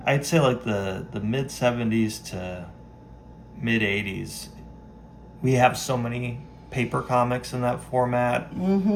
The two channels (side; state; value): both; identical; correlation 1.00